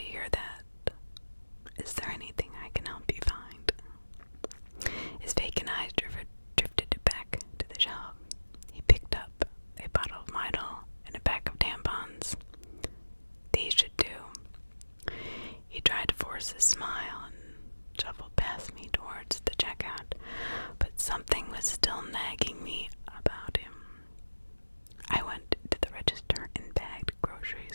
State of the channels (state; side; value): inverted; both; correlation -1.00